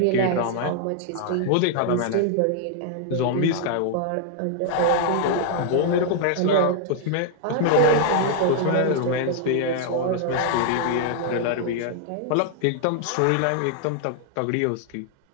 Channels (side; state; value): both; different; correlation 0.00